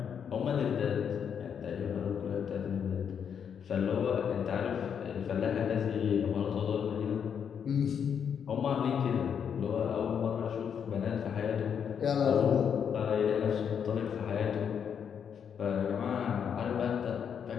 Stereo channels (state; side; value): quieter; right; 7.7 dB